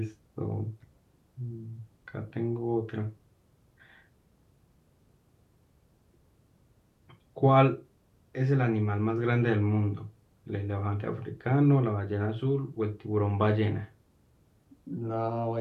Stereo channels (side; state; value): both; identical; correlation 1.00